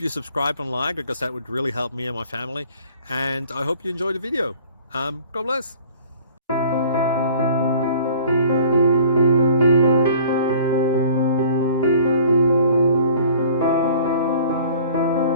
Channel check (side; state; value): both; inverted; correlation -0.51